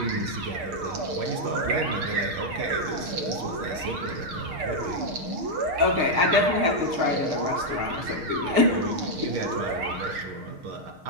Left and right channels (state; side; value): late; left; 6.5 ms